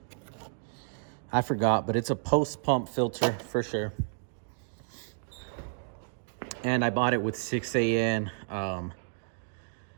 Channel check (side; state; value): left; silent; digital silence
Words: I forgot, but it's a post pump filter for sure. And I bought it with 6AN